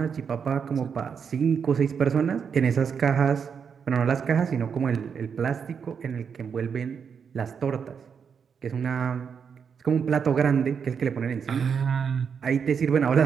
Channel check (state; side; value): quieter; left; 6.7 dB